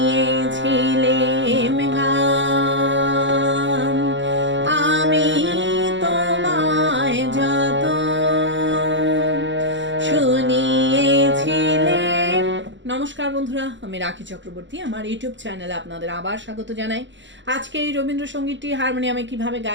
গান, আমি তোমায় যত শুনিয়েছিলেম। নমস্কার বন্ধুরা, আমি রাখি চক্রবর্তী। আমার ইউটিউব চ্যানেলে আপনাদের আবার স্বাগত জানাই। আজকে এই রবীন্দ্রসঙ্গীতটি হারমোনিয়ামে কিভাবে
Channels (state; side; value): late; left; 0.54 ms